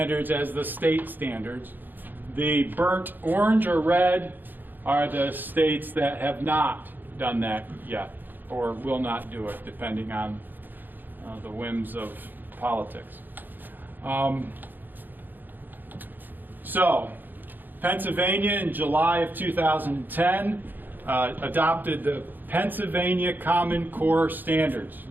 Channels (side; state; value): left; late; 0.089 ms